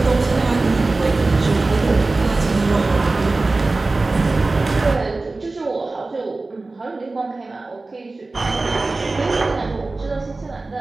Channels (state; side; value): quieter; left; 3.4 dB